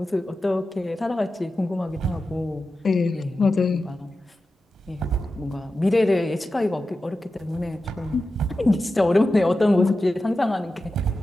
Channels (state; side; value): normal; both; correlation 0.92